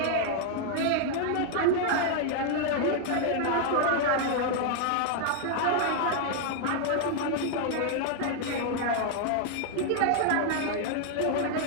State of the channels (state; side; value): different; both; correlation 0.00